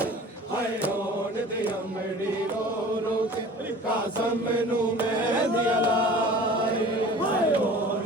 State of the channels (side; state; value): both; normal; correlation 0.43